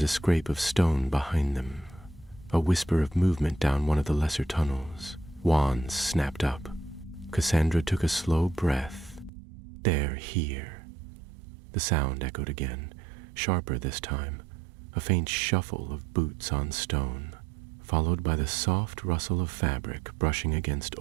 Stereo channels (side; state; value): left; drops out; at 9.3 s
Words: a scrape of stone behind them, a whisper of movement down one of the lesser tunnels. Wands snapped up. Cassandra took a slow breath. They're here. The sound echoed again, sharper this time, a faint shuffle of boots on stone, followed by the soft rustle of fabric brushing against